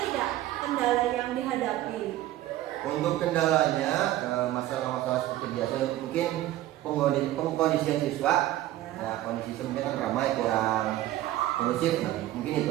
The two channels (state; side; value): quieter; left; 14.5 dB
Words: tidak kendala yang dihadapi? Untuk kendalanya, masalah-masalah seperti biasa mungkin pengkondisian siswa, ya kondisi siswa mungkin kan ramai, kurang kondusif, nah, mungkin